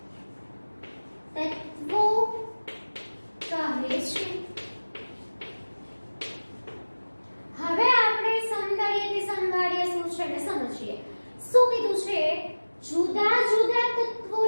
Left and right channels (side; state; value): both; inverted; correlation -1.00